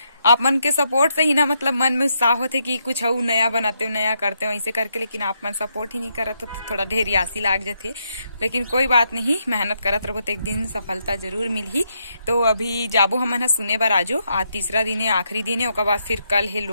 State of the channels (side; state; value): both; inverted; correlation -0.78